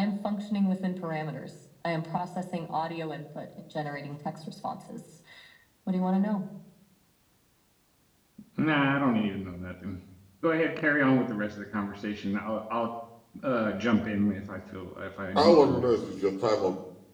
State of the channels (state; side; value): identical; both; correlation 1.00